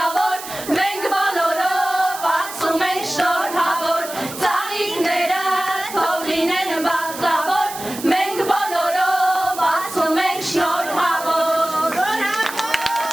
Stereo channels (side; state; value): right; noise; hiss, 11 dB below the sound